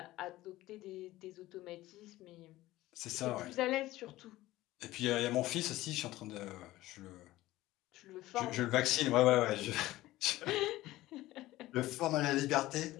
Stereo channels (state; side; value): quieter; right; 16.8 dB